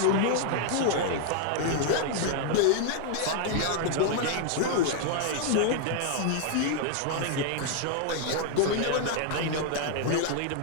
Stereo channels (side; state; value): both; different; correlation 0.00